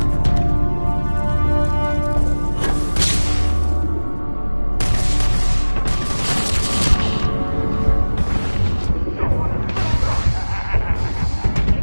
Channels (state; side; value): inverted; both; correlation -1.00